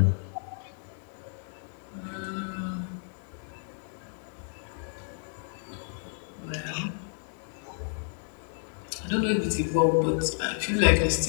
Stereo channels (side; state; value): right; silent; digital silence